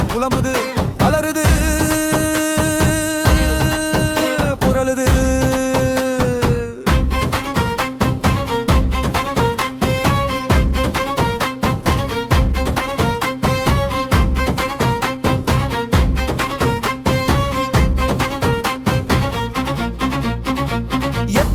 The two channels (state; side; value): identical; both; correlation 1.00